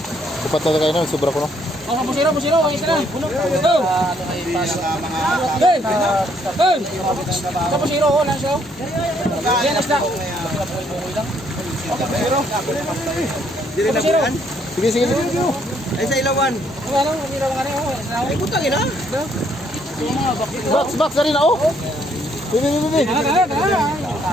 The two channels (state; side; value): normal; both; correlation 0.69